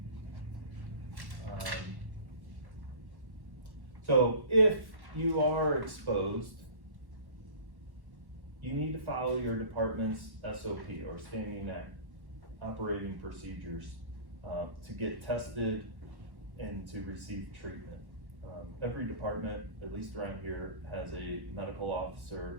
So if you are exposed, you need to follow your department's SOP or standing operating procedures to get tested and to receive treatment. Every department, at least around here, has a medical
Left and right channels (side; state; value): left; late; 1.1 ms